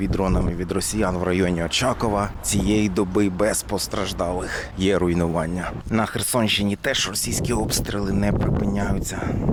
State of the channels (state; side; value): identical; both; correlation 1.00